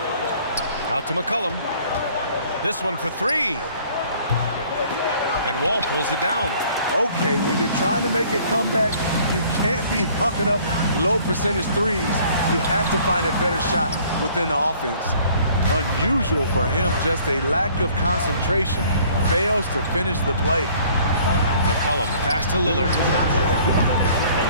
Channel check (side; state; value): both; inverted; correlation -0.56